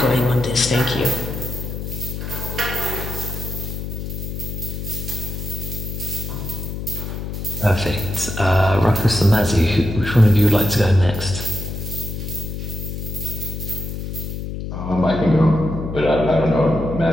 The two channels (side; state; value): left; noise; hum, 6 dB below the sound